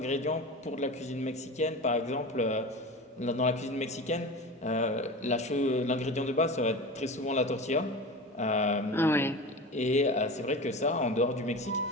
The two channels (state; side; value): normal; both; correlation 0.30